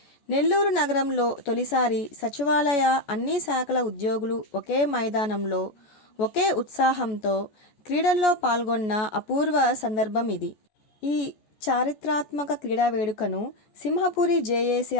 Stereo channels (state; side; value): late; right; 14 ms